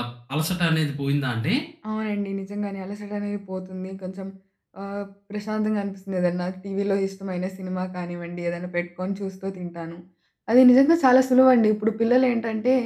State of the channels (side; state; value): both; identical; correlation 1.00